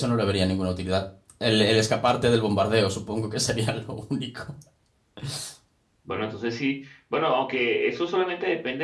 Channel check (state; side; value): identical; both; correlation 1.00